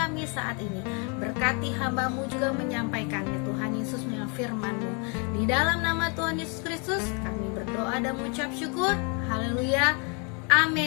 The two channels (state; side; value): quieter; right; 35.2 dB